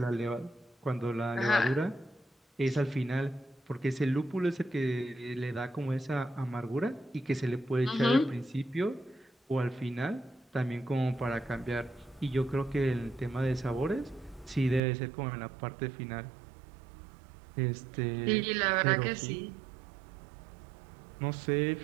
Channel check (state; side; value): drops out; left; at 14.8 s